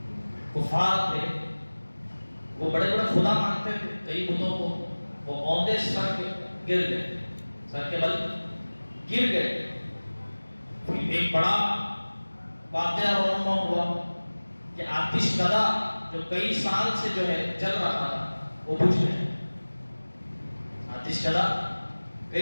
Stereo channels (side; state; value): both; inverted; correlation -1.00